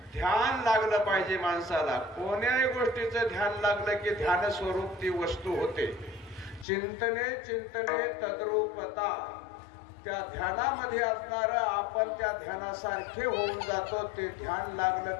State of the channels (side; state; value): right; drops out; at 6.7 s